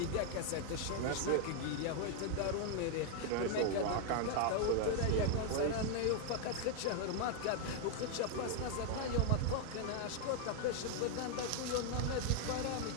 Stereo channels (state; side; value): different; both; correlation 0.00